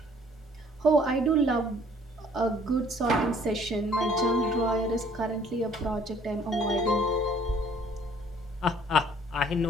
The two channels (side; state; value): both; normal; correlation 0.58